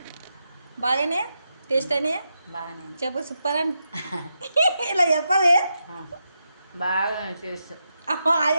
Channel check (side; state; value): both; inverted; correlation -0.86